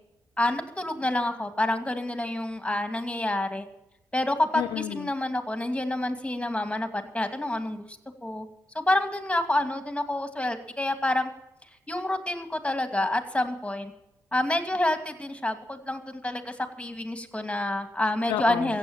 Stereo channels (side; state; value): both; normal; correlation 0.86